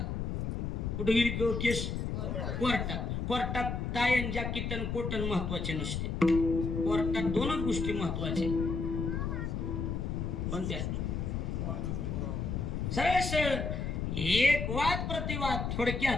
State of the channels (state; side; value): noise; left; rumble, 2 dB below the sound